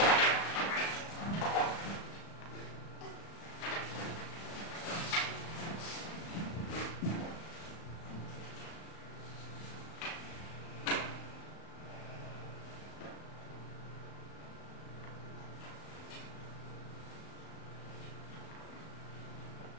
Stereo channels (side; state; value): right; late; 36 ms